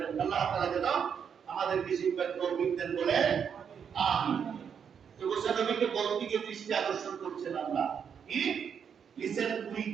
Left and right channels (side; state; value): left; quieter; 7.4 dB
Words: আল্লাহ তাআলা যেন আমাদেরকে শিক্ষার তৌফিক দেন, বলে আমিন। তো মুসানবীকে বলতে গিয়ে দৃষ্টি আকর্ষণ করছেন আল্লাহ, কি লিসেন উইথ